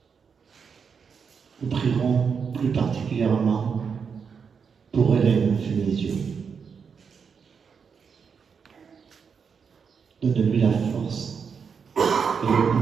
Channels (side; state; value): left; quieter; 6.2 dB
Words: Nous prierons plus particulièrement pour Hélène Fénésio. Donne-lui la force et le